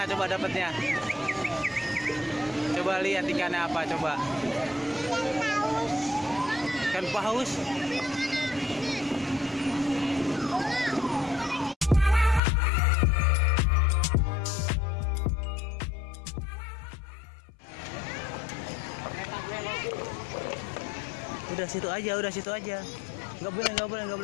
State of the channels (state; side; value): drops out; right; at 12.4 s